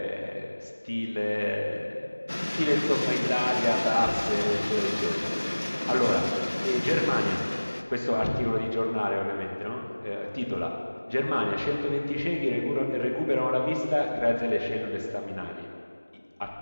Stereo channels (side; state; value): both; inverted; correlation -1.00